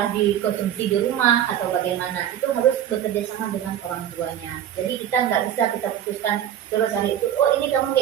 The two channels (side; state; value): left; quieter; 10.6 dB